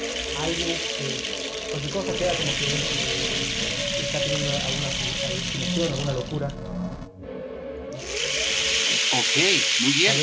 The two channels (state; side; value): identical; both; correlation 1.00